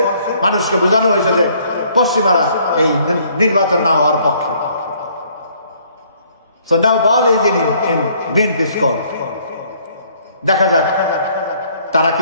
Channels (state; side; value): inverted; both; correlation -0.63